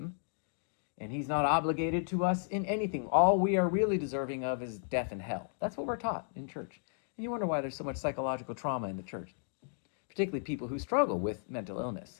and he's not obligated to us in anything. All we are really deserving of is death and hell. That's what we're taught in church. And you wonder why there's so much psychological trauma in the church, particularly people who struggle with mental illness.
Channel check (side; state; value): right; silent; digital silence